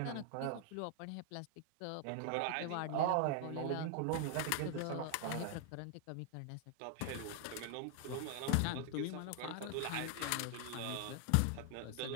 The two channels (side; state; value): both; different; correlation 0.00